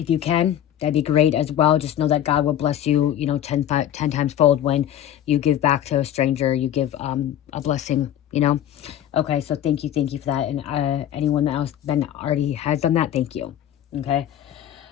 you can, that'd be great as well. Just know that God will bless you, you know, 10 times fold when you give back to a stranger. You give a blessing, you know. Okay, so thank you for that. And anyone else that already has done that, thank you.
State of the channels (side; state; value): right; quieter; 10.9 dB